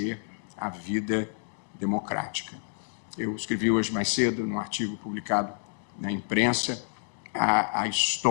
a vida democrática. Eu escrevi hoje mais cedo, num artigo publicado na imprensa, a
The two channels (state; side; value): silent; right; digital silence